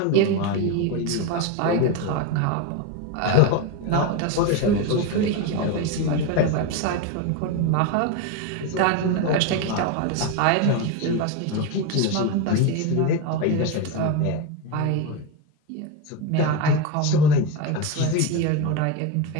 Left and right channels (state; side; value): different; both; correlation 0.04